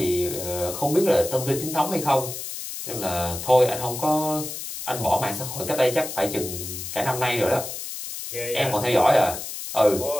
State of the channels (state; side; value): noise; left; hiss, 8 dB below the sound